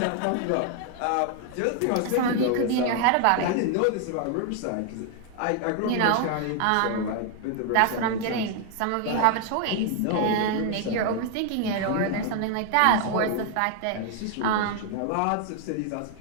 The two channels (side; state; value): both; different; correlation 0.00